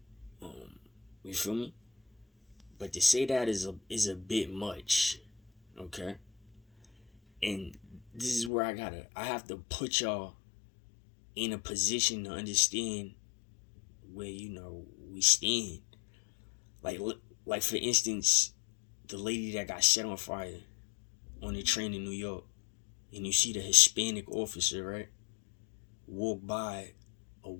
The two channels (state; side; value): drops out; right; at 8.5 s